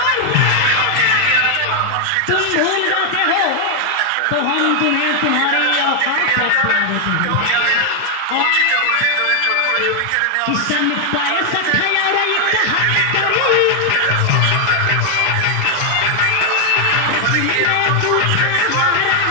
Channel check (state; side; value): different; both; correlation 0.00